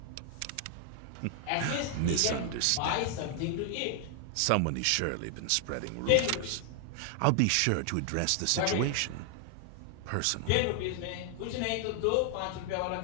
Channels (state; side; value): different; both; correlation 0.00